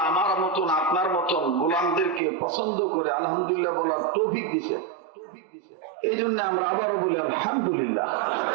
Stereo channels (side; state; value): left; drops out; at 2.2 s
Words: আমার মতন আপনার মতন গোলামদেরকে পছন্দ করে আলহামদুলিল্লাহ বলার তৌফিক দিছে। এই জন্য আমরা আবারও বলি আলহামদুলিল্লাহ।